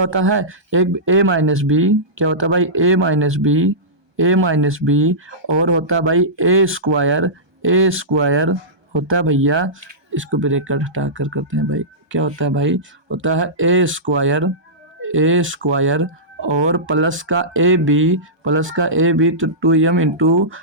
है, एक a माइनस बी, क्या होता है भाई a माइनस बी और होता है भाई a स्क्वायर होता है भैया, इसको ब्रैकेट हटा कर करते हैं भाई, क्या होता है भाई, होता है a स्क्वायर और प्लस का ए बी तो 2m इंटू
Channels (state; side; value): late; left; 1.2 ms